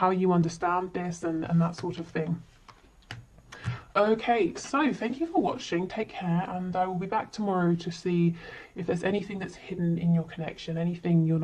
you understand this and that sort of thing. Okay, so thank you for watching, take care, and I will be back tomorrow to see if there's anything that's hidden in your connection, anything you're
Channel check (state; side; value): identical; both; correlation 1.00